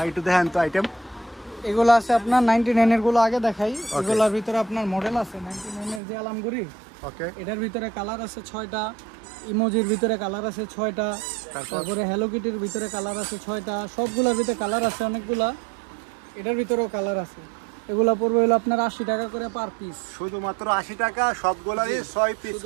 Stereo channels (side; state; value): left; drops out; at 6.0 s